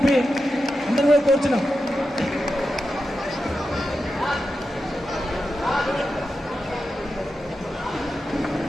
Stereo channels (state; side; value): normal; both; correlation 0.89